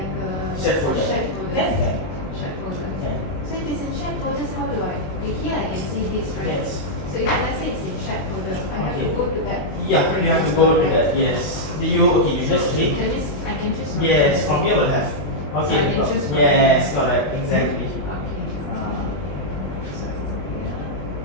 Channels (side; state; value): right; late; 20 ms